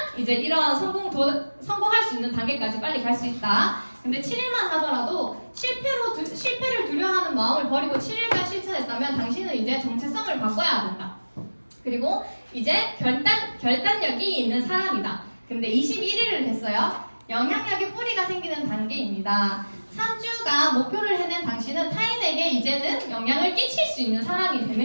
이제 이런 성공할 수 있는 단계까지 빨리 갈 수 있다. 근데 7일만 하더라도 실패를 두려워하는 마음을 버리고 7일간 실천했다면 당신은 이제 정체성을 바꿔야 된다. 그리고 이제 결단력이 있는 사람이다. 근데 21일을 했어요. 영향력의 뿌리가 생기는 단계입니다. 3주가 목표를 해낸 당신은 타인에게 이제는 영향을 끼칠 수 있는 사람이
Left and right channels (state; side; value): inverted; both; correlation -1.00